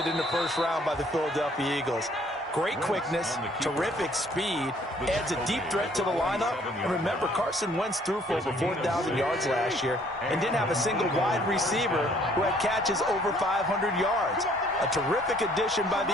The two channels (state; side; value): normal; both; correlation 0.61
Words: in the 1st round by the Philadelphia Eagles. Great quickness, terrific speed, adds a deep threat to the lineup. And remember, Carson Wentz threw for over 4,000 yards last year and didn't have a single wide receiver who had catches over 500 yards. A terrific addition by the